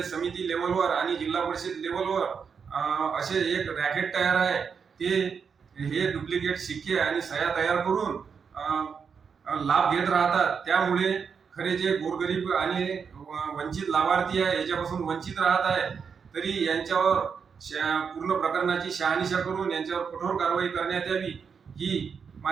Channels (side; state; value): left; quieter; 6.2 dB